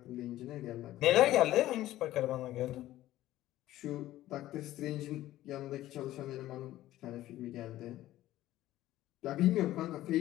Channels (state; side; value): quieter; right; 14.8 dB